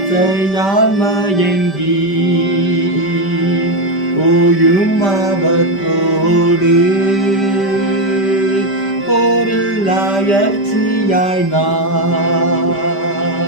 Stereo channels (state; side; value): late; right; 5.1 ms